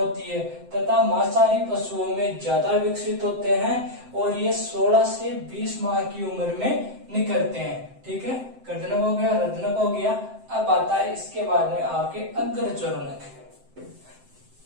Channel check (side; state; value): left; late; 7.7 ms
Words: है। तथा मांसाहारी पशुओं में ज्यादा विकसित होते हैं और ये 16 से 20 माह की उम्र में निकलते हैं। ठीक है, कर्दनक हो गया, रत्नक हो गया। अब आता है इसके बाद में आपके अग्रचोरणक।